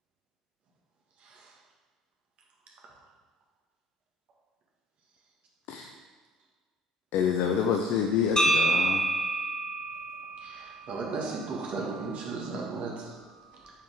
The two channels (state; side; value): normal; both; correlation 0.56